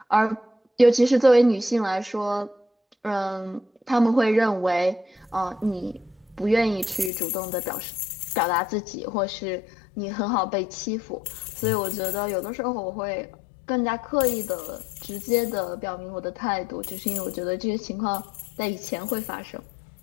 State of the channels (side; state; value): right; drops out; at 7.1 s